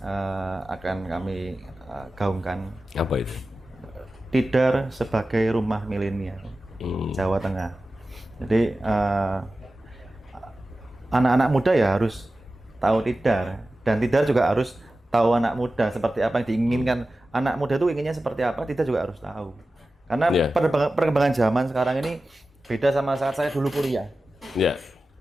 akan kami gaungkan. Apa itu? Tidar sebagai rumah milenial Jawa Tengah. Jadi anak-anak muda ya harus tahu Tidar, dan Tidar juga harus tahu anak muda seperti apa yang diinginkan. Anak muda itu inginnya seperti apa, Tidar juga harus tahu. Karena perkembangan zaman sekarang ini beda sama saat saya dulu kuliah.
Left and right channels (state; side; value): normal; both; correlation 0.95